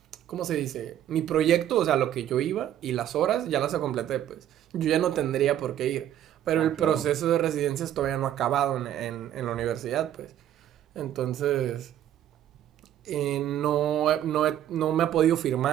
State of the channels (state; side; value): quieter; left; 11.4 dB